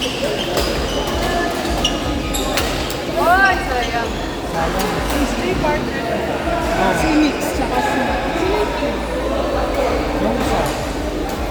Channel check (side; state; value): both; identical; correlation 1.00